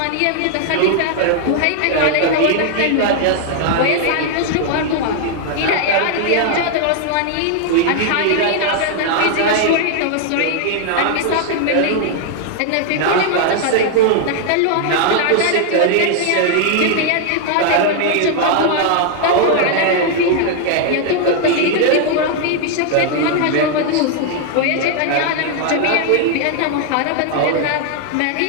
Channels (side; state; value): both; different; correlation 0.00